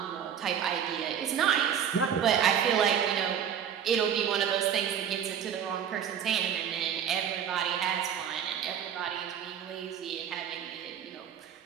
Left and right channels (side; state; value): left; quieter; 8.6 dB